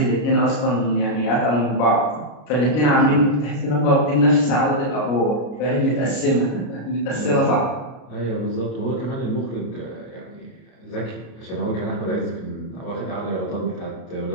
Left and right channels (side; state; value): right; late; 33 ms